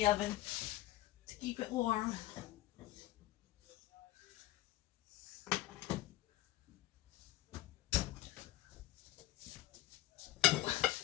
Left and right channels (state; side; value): quieter; right; 15.5 dB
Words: oven to keep it warm.